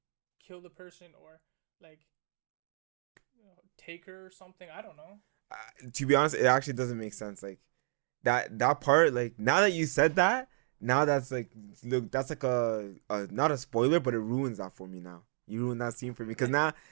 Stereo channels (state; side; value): silent; left; digital silence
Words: kill the person, or like take her or something? I don't know. To be honest, it actually doesn't make sense. Like that part. Like now that you said that, now that's like, look, that's like a not a spoiler, but it ruins that for me now. You ruined that scene for me, because now